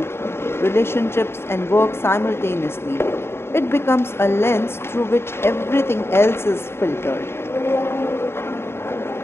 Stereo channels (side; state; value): right; late; 0.12 ms